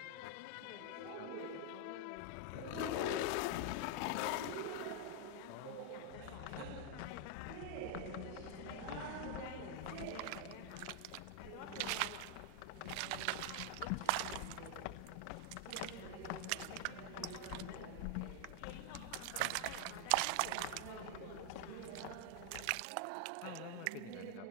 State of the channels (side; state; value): both; different; correlation 0.00